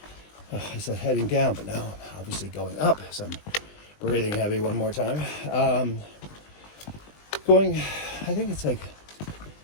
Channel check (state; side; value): late; right; 20 ms